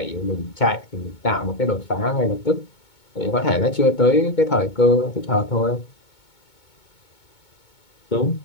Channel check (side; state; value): right; late; 2.2 ms